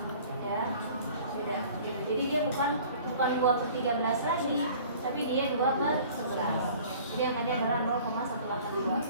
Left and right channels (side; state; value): both; inverted; correlation -0.48